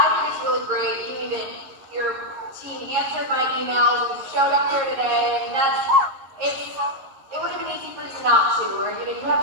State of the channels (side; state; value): left; late; 11 ms